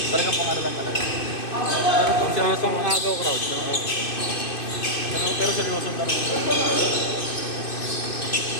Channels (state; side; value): late; right; 2.6 ms